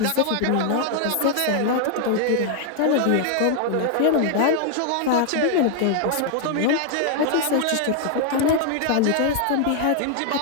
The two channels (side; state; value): both; different; correlation 0.00